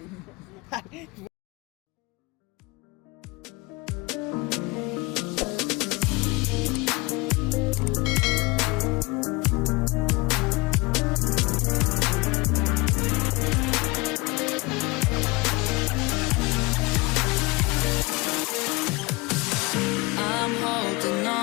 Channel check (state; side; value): quieter; right; 24.7 dB